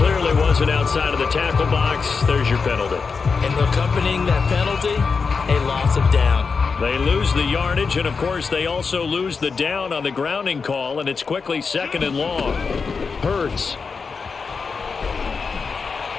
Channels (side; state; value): right; quieter; 5.0 dB